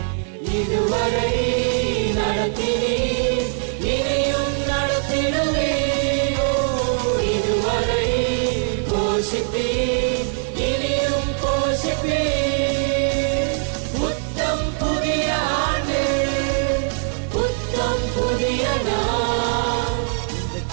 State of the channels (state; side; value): silent; left; digital silence